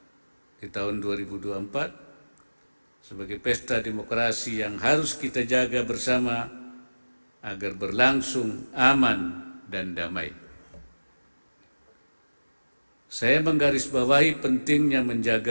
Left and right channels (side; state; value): both; inverted; correlation -1.00